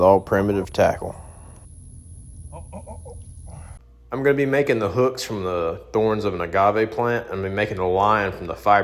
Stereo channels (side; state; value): both; identical; correlation 1.00